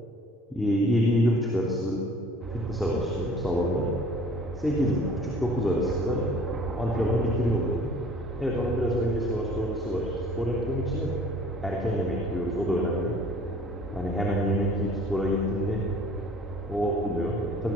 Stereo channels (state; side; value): normal; both; correlation 0.51